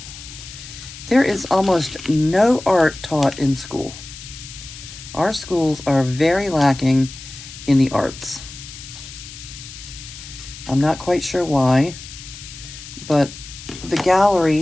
there is almost no art taught in school. Our schools are very lacking in the arts. I'm not quite sure why, but the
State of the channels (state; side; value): noise; left; hiss, 14 dB below the sound